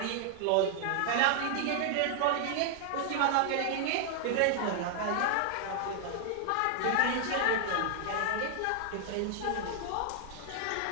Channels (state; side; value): different; both; correlation 0.00